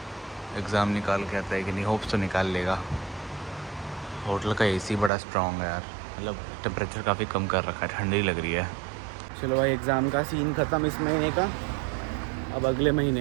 एग्ज़ाम निकाल के आता है कि नहीं। होप्स तो निकाल लेगा। होटल का एसी बड़ा स्ट्रॉन्ग है यार, मतलब टेम्परेचर काफ़ी कम कर रखा है, ठंडी लग रही है। चलो भाई एग्ज़ाम का सीन ख़त्म इस महीने का, अब अगले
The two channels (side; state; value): left; drops out; at 5.1 s